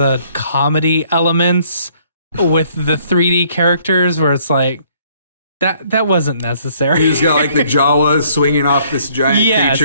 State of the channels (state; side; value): inverted; both; correlation -0.63